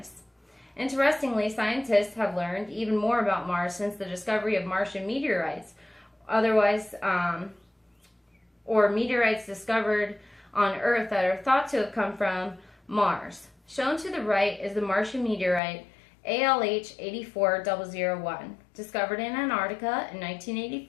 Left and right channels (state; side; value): drops out; right; at 15.6 s